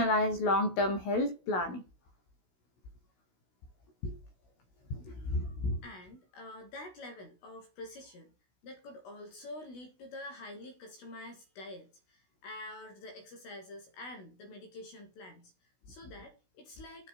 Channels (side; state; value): right; late; 16 ms